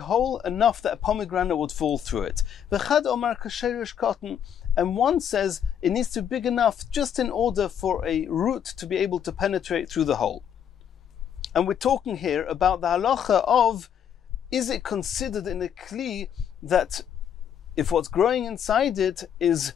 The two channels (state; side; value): quieter; right; 8.9 dB